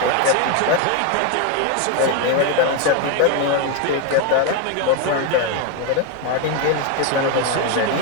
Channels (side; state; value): both; different; correlation 0.01